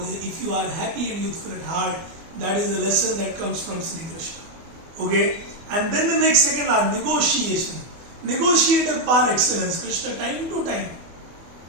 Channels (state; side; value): late; left; 24 ms